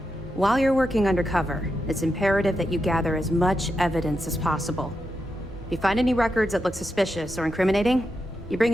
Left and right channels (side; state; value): both; normal; correlation 0.86